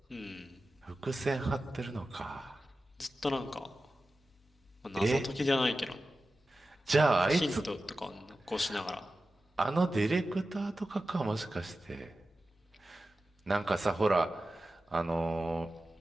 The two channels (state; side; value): normal; both; correlation 0.94